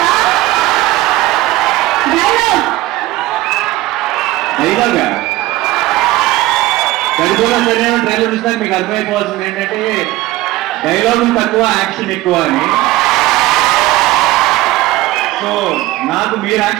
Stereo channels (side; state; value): left; quieter; 17.3 dB